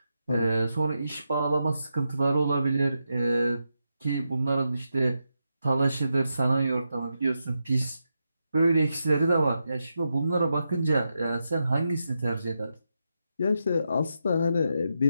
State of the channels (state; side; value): inverted; both; correlation -0.86